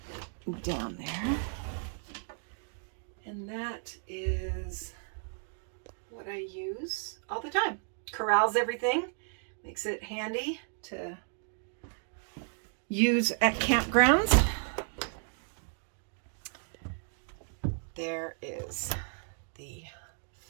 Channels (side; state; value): left; silent; 55 dB below the other